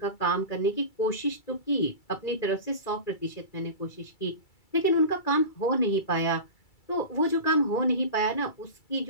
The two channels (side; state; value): right; late; 2.3 ms